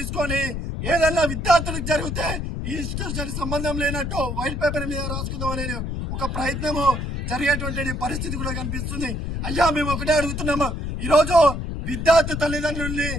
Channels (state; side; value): noise; left; rumble, 3 dB below the sound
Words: ఏదన్నా విద్యార్థులకు జరిగితే ఈ ఇన్స్టిట్యూషన్ సంబంధం లేనట్టు వైట్ పేపర్ మీద రాసుకుందాం అనే ఒక ప్రయత్నము జరిగేటువంటి పరిస్థితి కూడా కనిపిస్తుంది. అయ్యా మేము ఒకటే అడుగుతున్నాము, ఈరోజు విద్యార్థి తల్లిదండ్రుల్ని